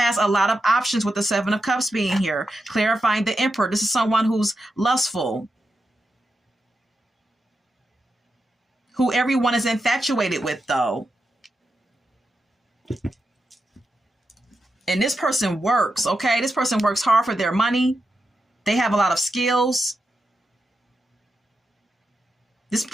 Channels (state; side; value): normal; both; correlation 0.87